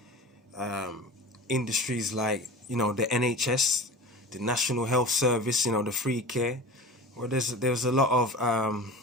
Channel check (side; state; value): both; normal; correlation 0.34